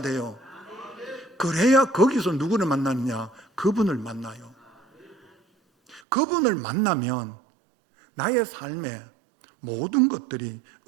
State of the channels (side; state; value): left; drops out; at 6.0 s